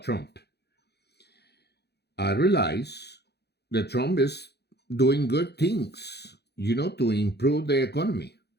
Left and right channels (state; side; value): late; right; 0.48 ms